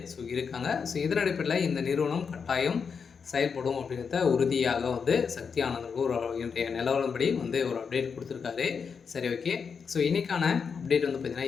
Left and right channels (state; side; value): quieter; right; 6.0 dB